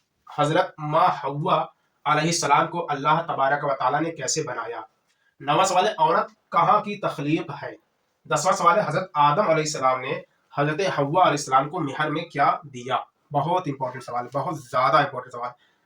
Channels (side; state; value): both; identical; correlation 1.00